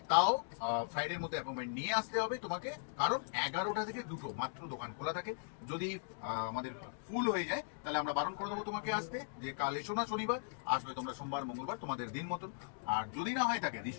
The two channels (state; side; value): silent; right; digital silence